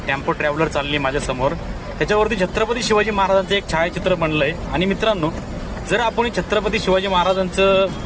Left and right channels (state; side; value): identical; both; correlation 1.00